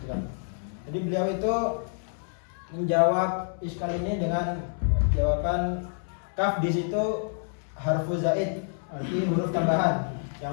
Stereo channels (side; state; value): right; silent; 59 dB below the other